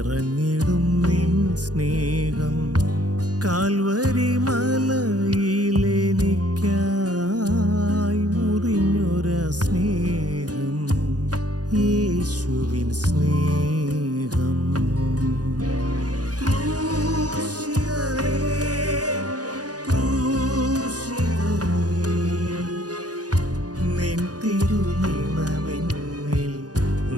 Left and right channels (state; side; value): late; left; 0.68 ms